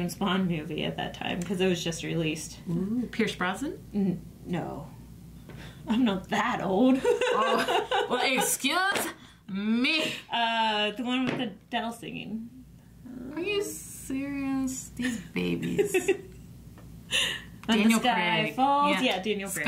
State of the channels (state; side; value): identical; both; correlation 1.00